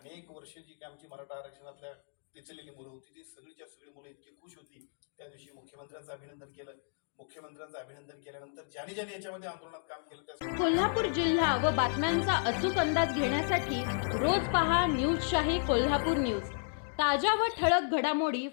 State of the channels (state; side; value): silent; right; digital silence